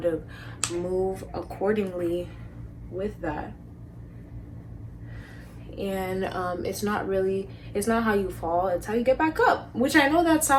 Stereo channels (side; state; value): both; identical; correlation 1.00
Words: of move accordingly with that. And it's not how you fall, it's how you get back up, which I know that